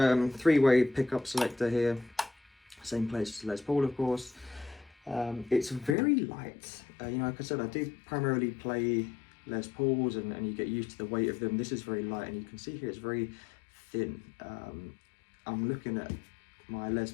pickup selector here, same place as Les Paul, of course. It's very light. Like I said, I do primarily play Les Pauls, and you get used to the weight of them. This is very light, and you can see here it's very thin. I'm looking at my Les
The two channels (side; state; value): right; drops out; at 6.0 s